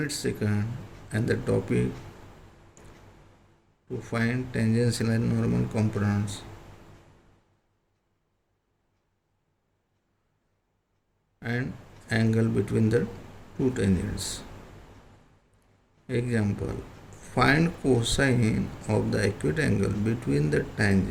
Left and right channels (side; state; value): both; identical; correlation 1.00